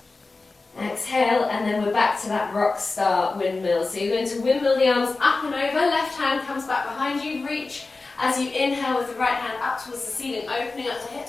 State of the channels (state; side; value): quieter; right; 3.6 dB